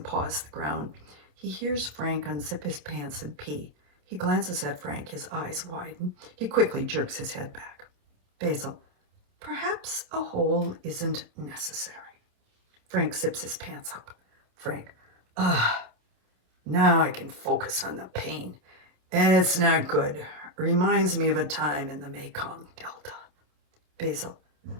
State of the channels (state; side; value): late; left; 27 ms